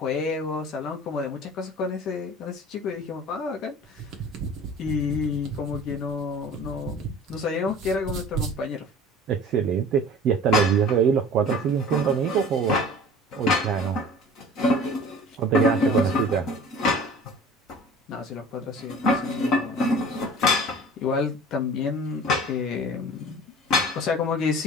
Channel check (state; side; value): normal; both; correlation 0.43